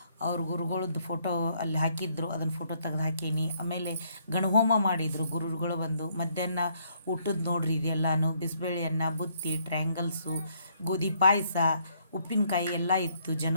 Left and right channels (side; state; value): both; inverted; correlation -0.69